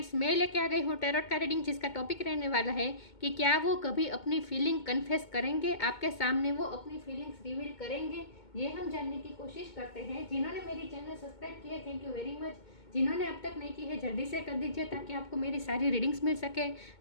मैं लेके आ गई हूँ टैरोट का रीडिंग, जिसका टॉपिक रहने वाला है कि क्या वो कभी अपनी फीलिंग कन्फेस करेंगे, आपके सामने वो अपनी फीलिंग्स रिवील करेंगे। ये हम जानने की कोशिश करते हैं। जिन्होंने मेरी चैनल सब्सक्राइब किया है, थैंक यू वेरी मच। जिन्होंने अब तक नहीं की है, जल्दी से कर दीजिए ताकि आपको मेरी सारी रीडिंग्स मिल सके।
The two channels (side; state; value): right; late; 2.2 ms